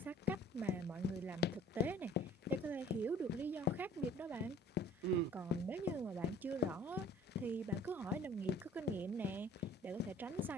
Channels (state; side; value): normal; both; correlation 0.51